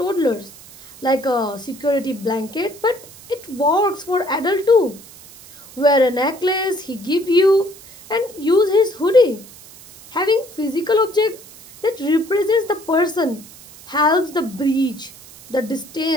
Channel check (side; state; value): right; noise; hiss, 20 dB below the sound